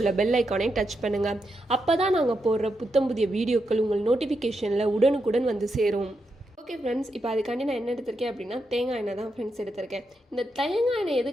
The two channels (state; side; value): normal; both; correlation 0.84